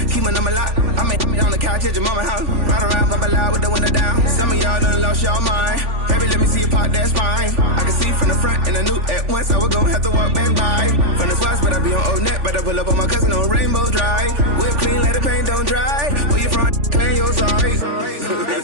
keep my number locked. I made on the couch at your mama house. Ride around, bubble loud with the window down. Some of y'all done lost y'all mind. Baby, let me see you pop that spine. I can see from the front and I knew at once I was gonna have to walk back by. From the spots, but I be on Old Net. But I pull up on my cousin on Rainbow Drive. Whip clean, let the paint don't dry. Where you from? Clean your sorry. Pull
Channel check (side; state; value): left; late; 3.4 ms